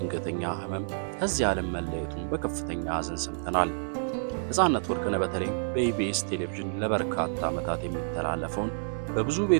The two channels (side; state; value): left; silent; digital silence